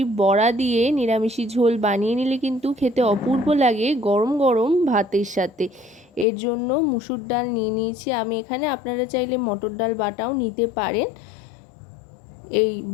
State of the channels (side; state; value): right; drops out; at 6.2 s